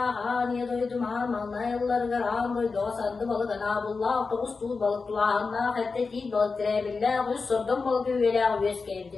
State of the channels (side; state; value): right; quieter; 4.4 dB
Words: haniye doydum malnayıllargar ağın doydu sandı balık anabullah otobüs tuğ balık tulağına hatta değil balık direbillah üst sordum balık üyelağ üyes